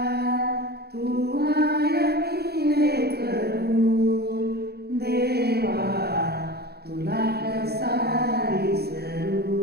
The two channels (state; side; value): late; left; 0.46 ms